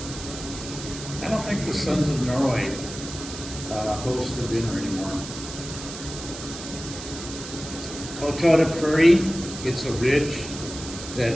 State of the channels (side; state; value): right; noise; hiss, 11 dB below the sound